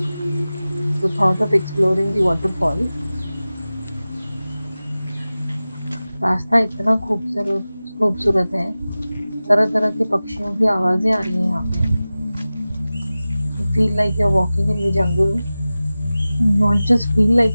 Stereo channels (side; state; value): both; inverted; correlation -0.96